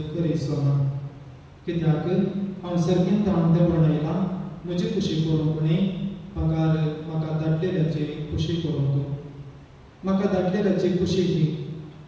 करीसो ना कित्याक हांव सर्गीन ताण देंवून येयलां म्हजी खुशी करूंक न्ही म्हाका धाडलेल्याची खुशी करूंक म्हाका धाडलेल्याची खुशी ही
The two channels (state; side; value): identical; both; correlation 1.00